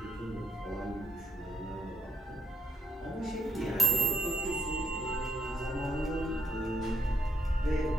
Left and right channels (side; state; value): both; normal; correlation 0.73